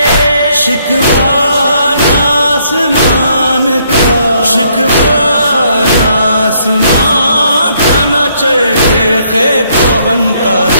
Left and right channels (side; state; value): both; inverted; correlation -0.69